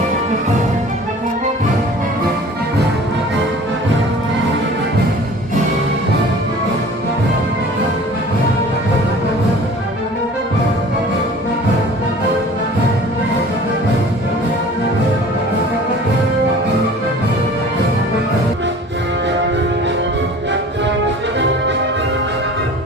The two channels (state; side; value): normal; both; correlation 0.45